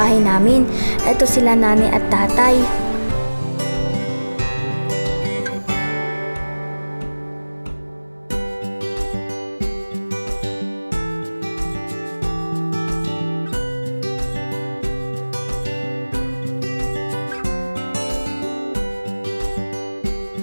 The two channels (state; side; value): inverted; both; correlation -1.00